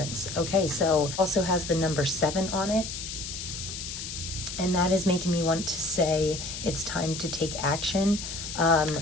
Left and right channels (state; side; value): noise; left; hiss, 7 dB below the sound